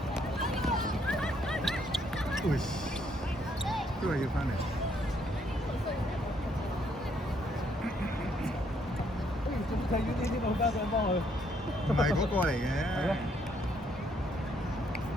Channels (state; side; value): normal; both; correlation 0.70